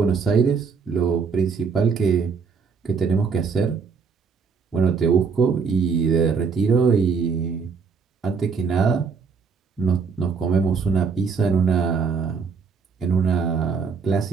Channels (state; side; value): quieter; left; 5.4 dB